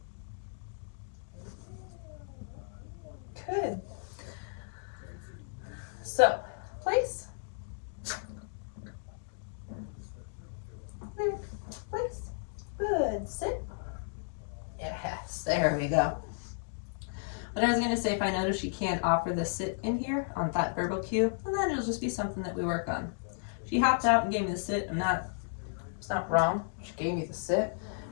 Good. So, place. Place. Good. Sit. Yes, there we go. But I was going to say, if I notice she can't offer the sit in here on that verbal cue, then it'll just be something that we work on. She hopped out and gave me the sit. It's not wrong. She gave me the sit.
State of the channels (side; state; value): right; silent; digital silence